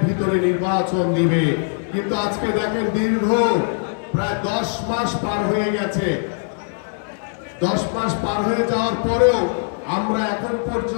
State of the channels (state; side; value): silent; right; 65 dB below the other